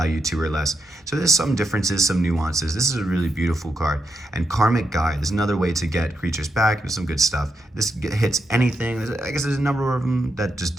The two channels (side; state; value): both; normal; correlation 0.83